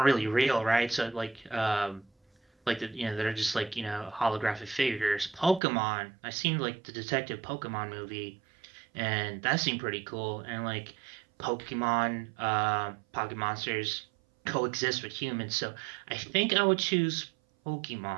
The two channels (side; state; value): left; drops out; at 5.6 s